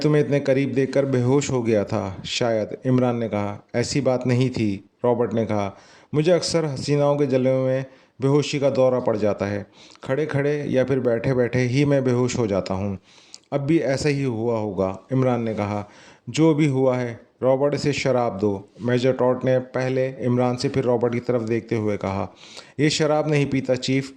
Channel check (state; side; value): identical; both; correlation 1.00